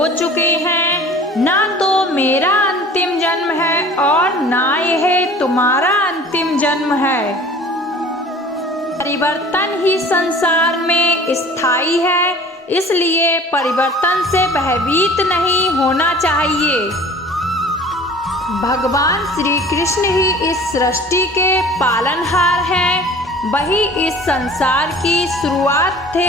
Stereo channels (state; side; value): normal; both; correlation 0.45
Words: चुके हैं। ना तो मेरा अंतिम जन्म है और ना यह तुम्हारा अंतिम जन्म है। परिवर्तन ही संसार में स्थायी है, इसलिए परिवर्तन से भयभीत नहीं होना चाहिए। भगवान श्री कृष्ण ही इस सृष्टि के पालनहार हैं, वही इस संसार की शुरुआत